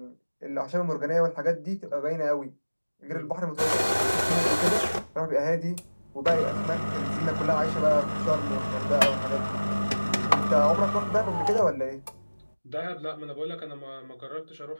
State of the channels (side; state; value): both; inverted; correlation -1.00